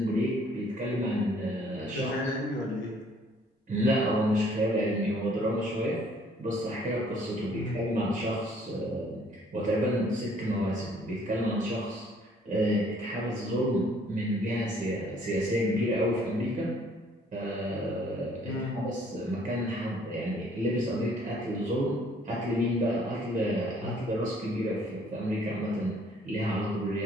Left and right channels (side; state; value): both; normal; correlation 0.60